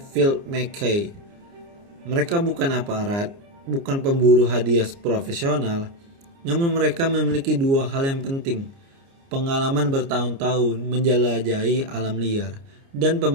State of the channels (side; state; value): left; late; 29 ms